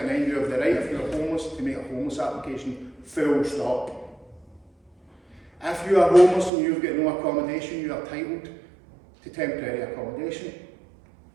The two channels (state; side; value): drops out; left; at 6.5 s